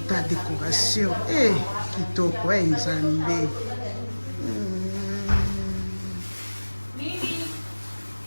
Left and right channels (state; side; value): inverted; both; correlation -1.00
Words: Ta décoration. Kitoko, nzambe.